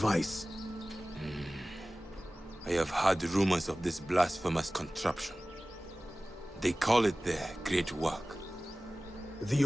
I have heard rumors of this blasphemous contraption. They call it their great work. The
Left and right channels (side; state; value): both; normal; correlation 0.97